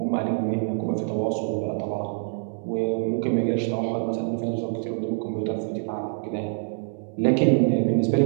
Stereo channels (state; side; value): silent; left; 61 dB below the other